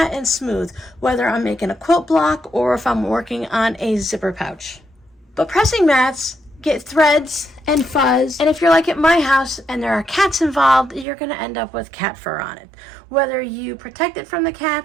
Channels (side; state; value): left; drops out; at 11.1 s